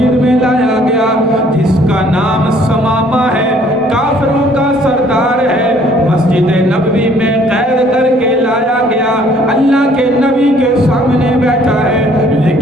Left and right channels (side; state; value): both; normal; correlation 0.60